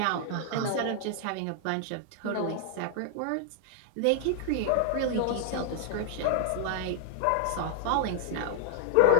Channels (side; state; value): both; different; correlation -0.01